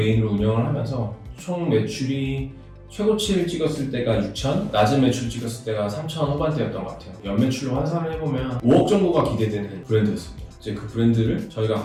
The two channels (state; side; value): identical; both; correlation 1.00